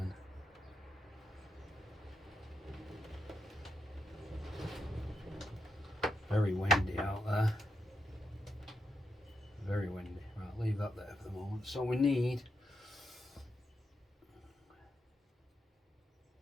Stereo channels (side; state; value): both; normal; correlation 0.83